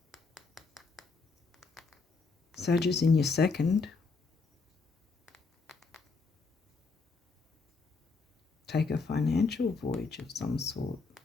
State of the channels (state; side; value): quieter; right; 4.3 dB